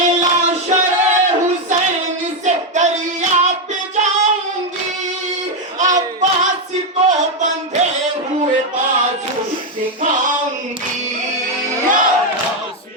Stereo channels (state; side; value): normal; both; correlation 0.04